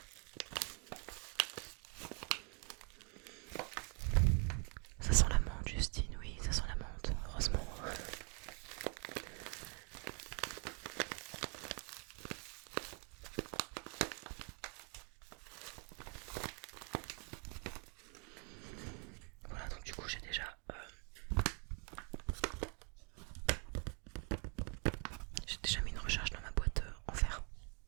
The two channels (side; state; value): left; quieter; 36.8 dB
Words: Ça sent la menthe, Justine, oui, ça sent la menthe, heureusement. Voilà, donc du coup j'ai déjà mis une recharge dans ma boîte en fer.